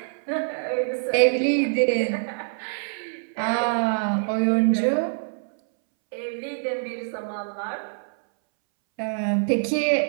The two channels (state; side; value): silent; left; 62 dB below the other